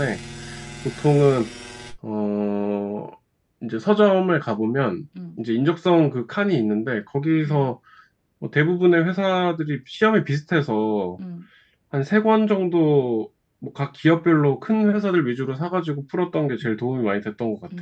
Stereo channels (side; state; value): both; identical; correlation 1.00